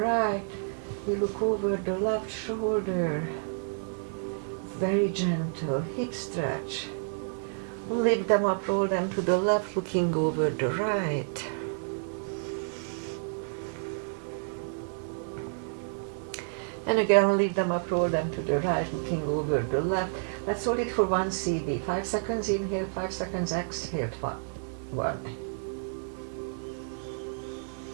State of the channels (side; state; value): left; silent; digital silence